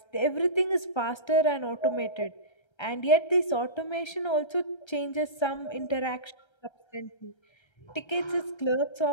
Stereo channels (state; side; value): late; right; 1.3 ms